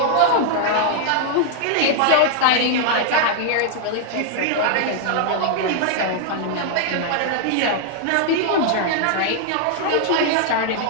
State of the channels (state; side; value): different; both; correlation 0.00